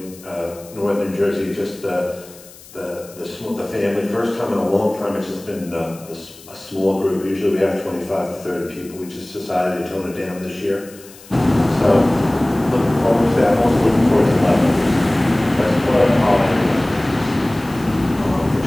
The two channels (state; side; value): noise; left; hiss, 21 dB below the sound